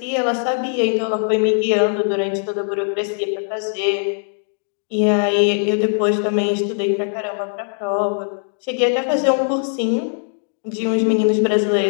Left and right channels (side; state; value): right; silent; digital silence